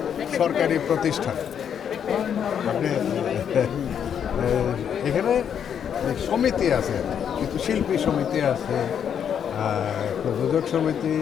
সরকারি প্রতিষ্ঠান। আপনি এখানে সমিতি আছে, কিন্তু শিল্পী সমিতি আছে, প্রযোজক সমিতি,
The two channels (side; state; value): right; quieter; 8.3 dB